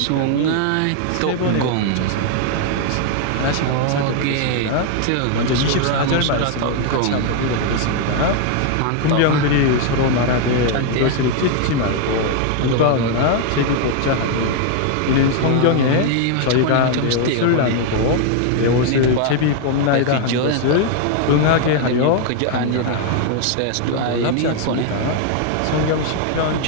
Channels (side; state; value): both; different; correlation 0.00